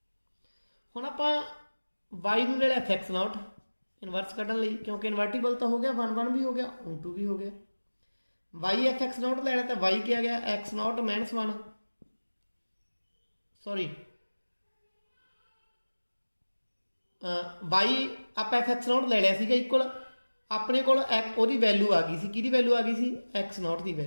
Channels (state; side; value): inverted; both; correlation -1.00